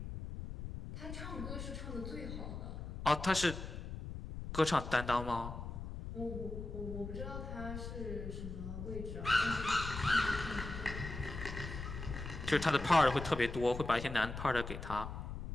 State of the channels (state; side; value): noise; left; rumble, 7 dB below the sound